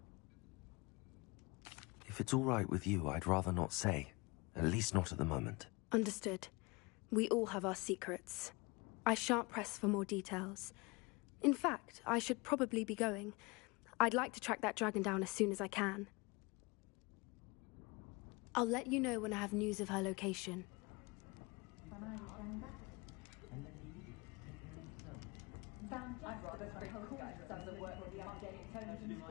If it's all right with you, I'd rather not say. At least not at the moment. Understood. We all have our secrets. I shan't press for more details. In fact, I should probably be going. I'd like to track that dragon down as soon as I can. I'll let you know when I have news of her location.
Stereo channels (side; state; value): right; quieter; 26.4 dB